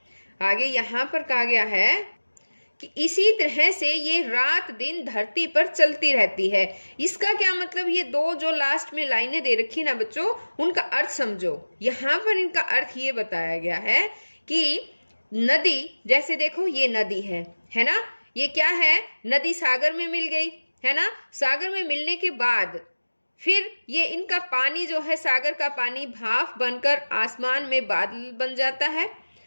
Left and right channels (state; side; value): inverted; both; correlation -1.00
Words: आगे यहाँ पर कहा गया है कि इसी तरह से ये रात दिन धरती पर चलती रहती है। इसका क्या मतलब, ये दो जो लास्ट में लाइनें दे रखी ना बच्चों, उनका अर्थ समझो। यहाँ पर इनका अर्थ ये बताया गया है कि नदी, जैसे देखो ये नदी है ना, ये क्या है, नदी सागर में मिल गई है ना। सागर में मिलने के बाद फिर ये इनका पानी जो है, सागर का पानी भाप बनकर आसमान में बादल बन जाता है,